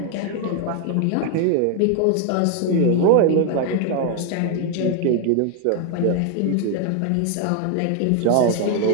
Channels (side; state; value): both; different; correlation 0.01